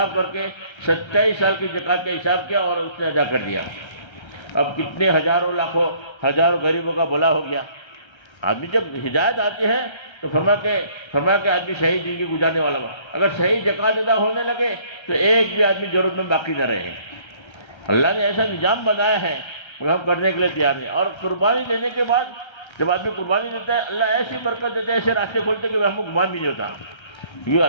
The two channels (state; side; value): late; right; 1.3 ms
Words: کر کے 27 سال کی زکوٰۃ کا حساب کیا اور اس نے ادا کر دیا۔ اب کتنے ہزاروں لاکھوں ہزاروں غریبوں کا بھلا ہو گیا۔ آدمی جب ہدایت آتی ہے تو فرمایا کہ آدمی صحیح زندگی گزارنے والا ہوا، اگر صحیح زکوٰۃ ادا ہونے لگے تو ایک بھی آدمی ضرورت میں باقی نہ رہے۔ اللہ نے ایسا نظام بنایا ہے مگر ہم کرنے کے لیے تیار نہیں۔ اور قربانی دینے کے بعد جب آدمی قربانی دیتا ہے اللہ ایسی برکت دیتا ہے، ایسے راستے کھولتے کہ ہم کو گمان بھی نہیں ہوتا، کیونکہ